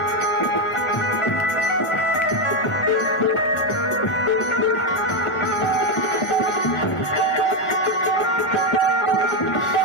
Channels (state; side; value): late; right; 1.4 ms